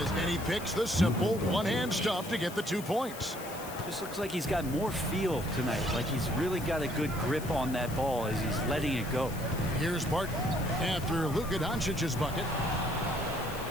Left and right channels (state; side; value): noise; left; hiss, 14 dB below the sound